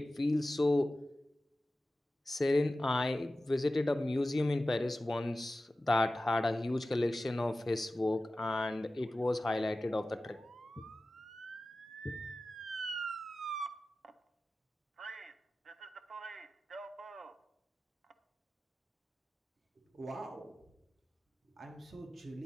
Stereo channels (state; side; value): normal; both; correlation 0.95